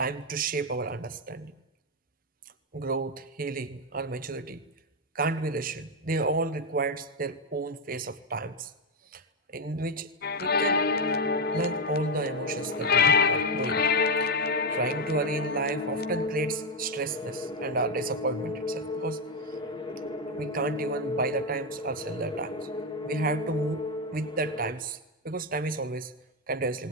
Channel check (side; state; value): both; normal; correlation 0.06